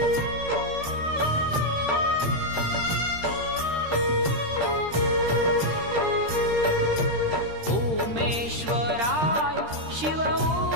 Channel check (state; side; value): late; left; 13 ms